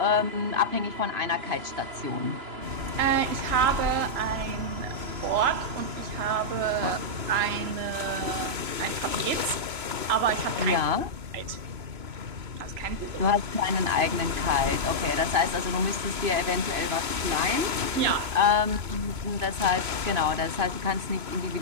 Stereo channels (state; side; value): late; left; 3.0 ms